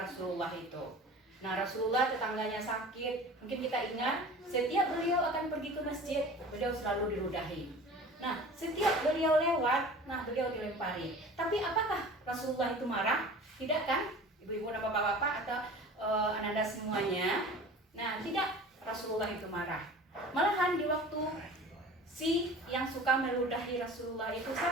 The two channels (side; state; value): both; normal; correlation 0.40